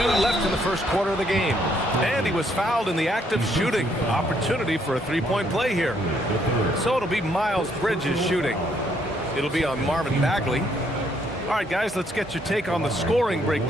left in the first quarter of the game. And he was fouled in the act of shooting. Opportunity for a three-point play here. So it'll be Miles Bridges shooting. It'll be on Marvin Bagley. All right, guys, let's get your take on the scoring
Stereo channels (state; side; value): normal; both; correlation 0.70